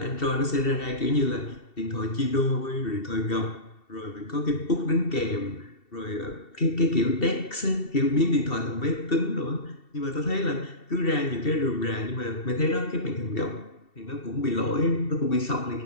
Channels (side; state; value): right; late; 2.7 ms